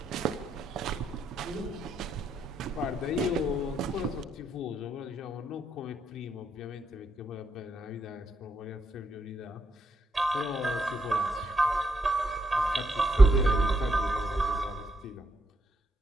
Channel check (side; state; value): both; normal; correlation 0.79